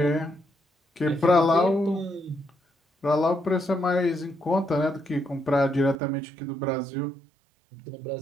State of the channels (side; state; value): left; drops out; at 6.0 s